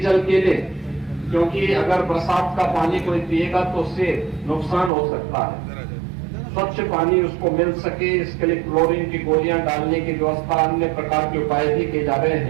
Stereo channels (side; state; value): left; drops out; at 4.9 s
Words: के लिए, क्योंकि अगर बरसात का पानी कोई पिएगा तो उससे नुकसान हो सकता है। स्वच्छ पानी उसको मिल सके, इसके लिए क्लोरीन की गोलियां डालने की व्यवस्था, अन्य प्रकार के उपाय भी किए जा रहे